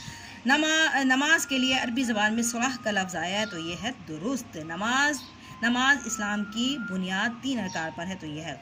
नमाज के लिए अरबी ज़बान में सलाह का लफ्ज़ आया है, तो ये है दुरुस्त। नमाज इस्लाम की बुनियाद 3 अरकान पर है, तो ये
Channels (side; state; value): both; identical; correlation 1.00